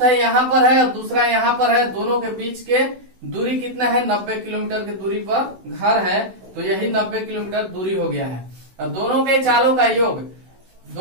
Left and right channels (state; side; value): late; left; 16 ms